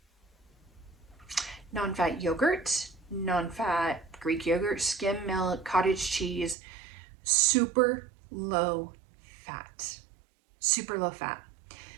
Non-fat yogurt, non-fat Greek yogurt, skim milk, cottage cheese, super low fat. Super low fat.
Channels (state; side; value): drops out; left; at 6.6 s